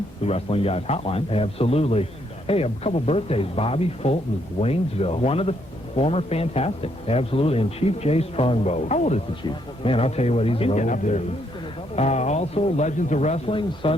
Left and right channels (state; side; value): normal; both; correlation 0.73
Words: the Wrestling Guys Hotline. Absolutely. Hey, a couple birthdays. Bobby Fulton, Waynesville. One of the former Fantastic. Absolutely. And Chief Jay Strongbow. How old is the Chief? Man, I'll tell you what, he's an old dude. Also, Legends of Wrestling,